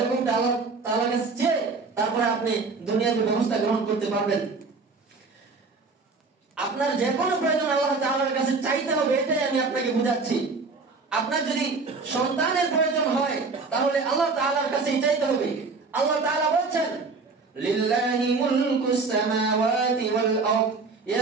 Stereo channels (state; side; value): quieter; left; 4.2 dB